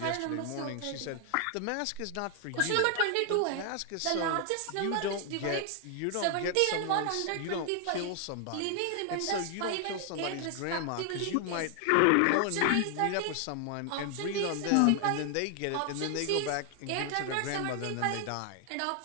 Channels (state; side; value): different; both; correlation 0.00